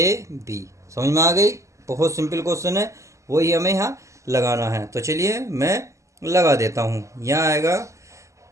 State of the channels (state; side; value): late; left; 0.15 ms